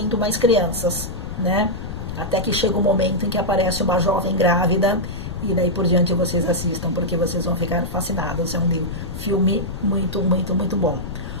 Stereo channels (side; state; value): left; noise; rumble, 8 dB below the sound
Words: mais crianças, né? Até que chega um momento em que aparece uma jovem grávida, e daí por diante vocês assistam, porque vocês vão ficar fascinados. É um filme muito, muito, muito bom.